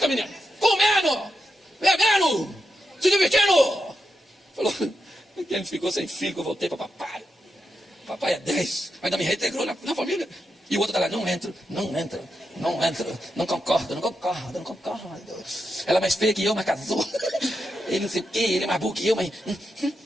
menino. Comendo, bebendo, se divertindo. Falou, ele ficou sem filho, eu voltei para papai. Papai é 10, ainda me reintegrou na família. E o outro está lá, não entra, não concordo. Ela é mais feia que eu, mas casou. Ele não sei o quê, ele é mais burro que eu, mas...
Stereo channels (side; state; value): both; normal; correlation 0.86